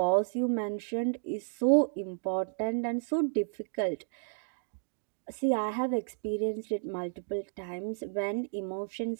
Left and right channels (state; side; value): silent; left; digital silence